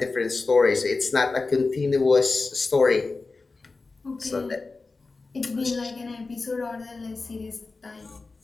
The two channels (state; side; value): quieter; right; 3.8 dB